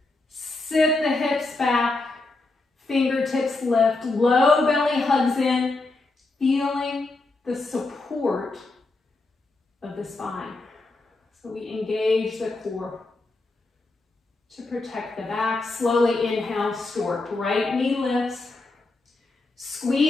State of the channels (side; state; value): right; quieter; 3.3 dB